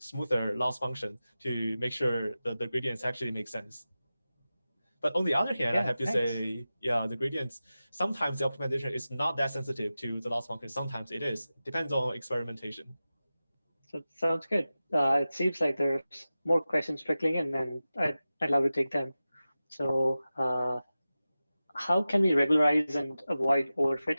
loss function to make sure that the gradients actually make sense. But on the other hand, I Yeah, have to thanks. say, yeah, the gradients, sometimes the optimization is not that sensitive to the loss function. Sometimes it is. Depends on experimentation. So it sounds good. It seems like there's more questions trickling in, and I'd love to take them. So, how can we regularize and avoid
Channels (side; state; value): both; inverted; correlation -0.95